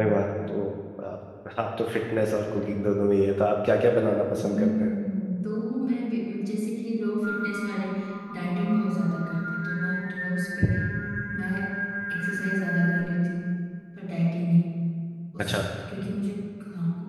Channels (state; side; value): identical; both; correlation 1.00